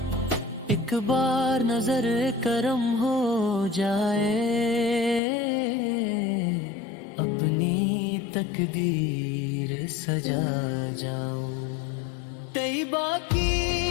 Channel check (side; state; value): right; drops out; at 5.2 s